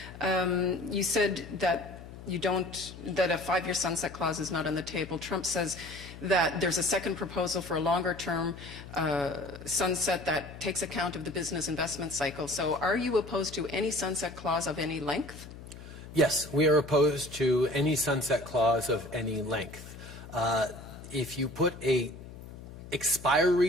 You said that that a 5-year sunset clause is not on the table. Trump says that there's a second proposal for a longer-term sunset that takes account of the business investment cycle. So are you opposed to any sunset clause of any length? Yes, we are opposed to any sunset clause of any length. If you put an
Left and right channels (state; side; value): noise; left; hum, 14 dB below the sound